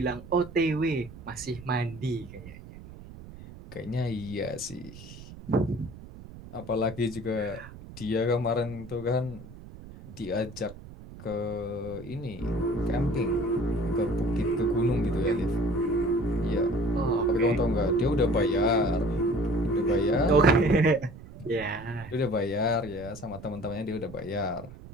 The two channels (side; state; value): right; noise; rumble, 16 dB below the sound